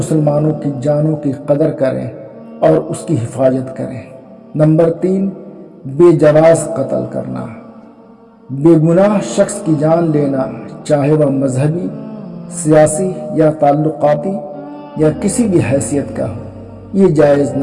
کی جانوں کی قدر کریں اور اس کی حفاظت کریں۔ نمبر 3، بے جواز قتل کرنا۔ بے گناہ شخص کی جان لینا، چاہے وہ مذہبی، سیاسی یا تعلقاتی یا کسی بھی حیثیت کا ہو، یہ جائز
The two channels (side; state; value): both; identical; correlation 1.00